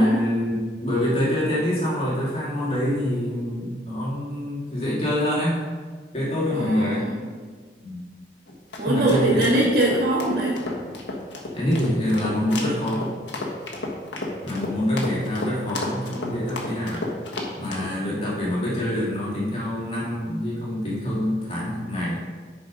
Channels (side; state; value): both; normal; correlation 0.62